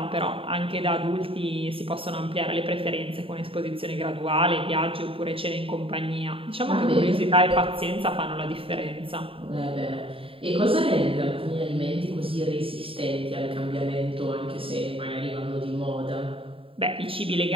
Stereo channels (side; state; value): left; late; 0.27 ms